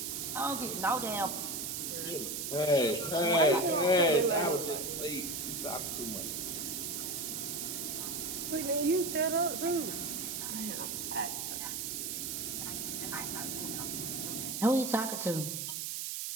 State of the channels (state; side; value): noise; right; hiss, 3 dB below the sound